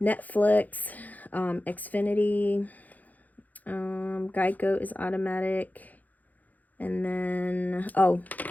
Netflix, Xfinity, Geico is automatic. And then, oh,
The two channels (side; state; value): right; late; 0.080 ms